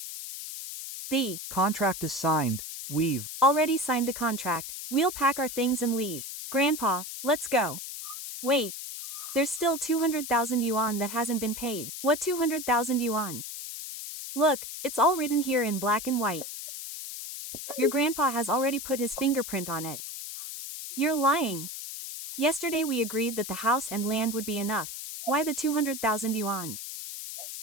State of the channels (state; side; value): noise; left; hiss, 8 dB below the sound